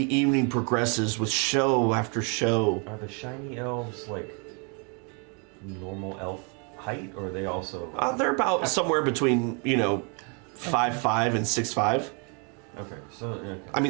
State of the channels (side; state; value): left; quieter; 35.4 dB